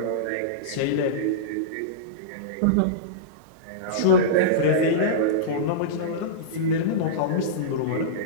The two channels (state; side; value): different; both; correlation -0.05